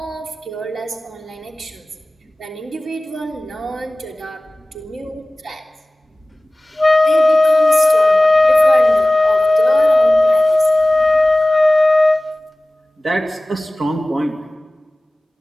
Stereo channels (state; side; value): normal; both; correlation 0.98